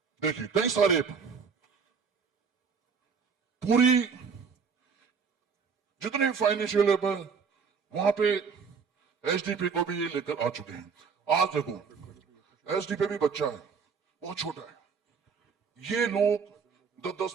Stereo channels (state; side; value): quieter; left; 5.9 dB